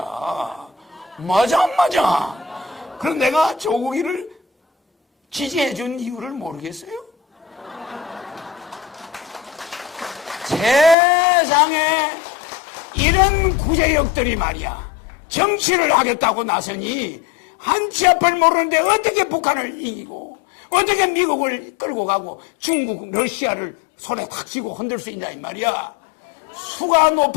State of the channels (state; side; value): drops out; right; at 11.0 s